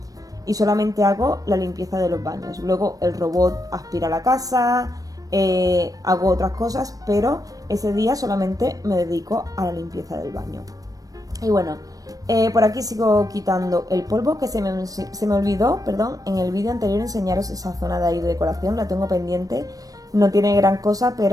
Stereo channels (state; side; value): late; left; 0.18 ms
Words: y solamente hago la limpieza de los baños. Luego el robot aspira la casa, hago otras cosas, pero ese día solamente me dedico a la limpieza del baño. Y bueno, por aquí sigo quitando el polvo, que se me olvidó, perdón, en el vídeo anterior enseñaros esa zona de ahí de decoración, la tengo pendiente, no tiene gran cosa,